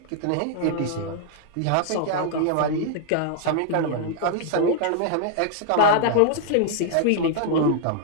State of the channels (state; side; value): different; both; correlation -0.01